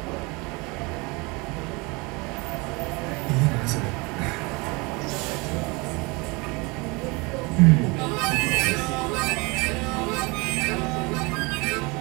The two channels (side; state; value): left; quieter; 26.8 dB